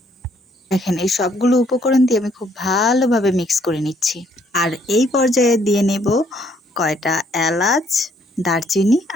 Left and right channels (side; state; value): both; normal; correlation 0.67